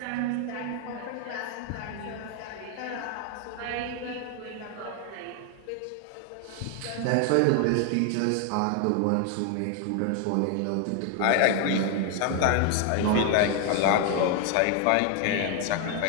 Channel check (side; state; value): both; different; correlation 0.00